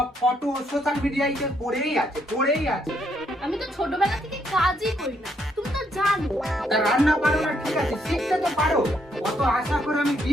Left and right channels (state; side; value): normal; both; correlation 0.73